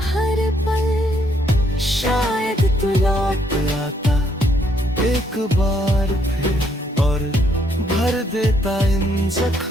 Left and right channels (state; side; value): normal; both; correlation 0.71